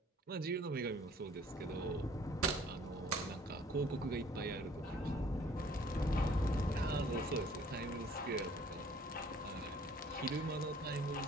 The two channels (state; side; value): normal; both; correlation 0.56